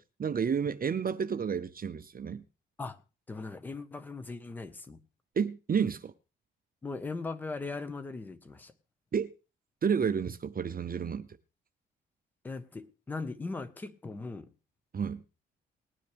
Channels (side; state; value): left; quieter; 4.7 dB